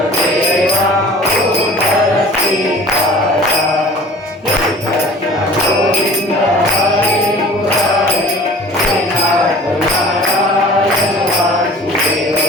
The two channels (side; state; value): both; normal; correlation 0.44